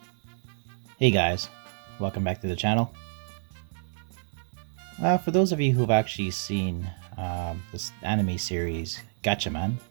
Hey guys, welcome back to the channel. For those of you who've actually seen this anime series Gatchaman,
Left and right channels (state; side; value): silent; left; 59 dB below the other